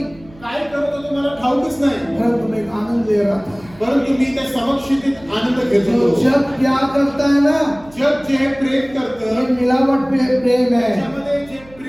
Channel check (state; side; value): noise; right; hum, 24 dB below the sound